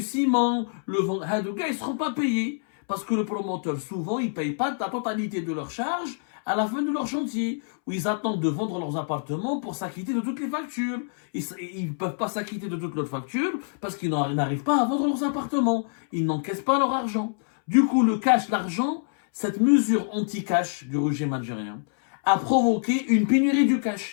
ciment, gars, ils seront pas payés. Parce que le promoteur, souvent, ils payent pas la totalité de leur charge à la fin de leur chantier, où ils attendent de vendre leurs appartements pour s'acquitter de toutes les factures. Ils peuvent pas s'acquitter de toutes leurs factures parce qu'ils n'arrivent pas à vendre leurs appartements. Ils n'encaissent pas leur argent. Du coup, le cash, l'argent, cette mesure anti-cash du régime algérien a provoqué une pénurie du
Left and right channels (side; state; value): right; silent; 61 dB below the other